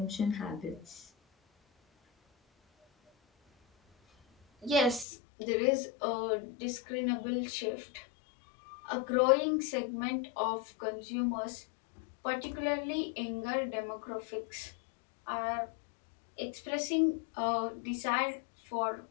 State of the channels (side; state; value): right; drops out; at 5.1 s